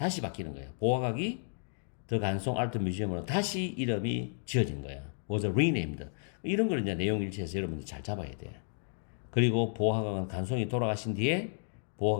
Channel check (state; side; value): silent; right; digital silence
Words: 바뀌는 거예요. 보화각이 더 간송 아트 뮤지엄으로 다시 이름이 지어진 거야. was renamed. 이런 걸 이제 내용 일치해서 여러분들 잘 잡아야 돼. 그리고 보화각은 간송이 돌아가신 뒤에